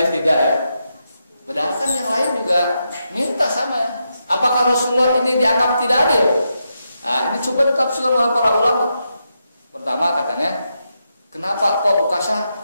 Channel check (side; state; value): both; inverted; correlation -0.84